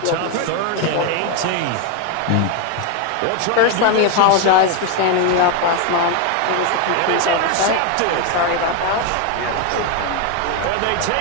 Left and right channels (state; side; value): different; both; correlation 0.01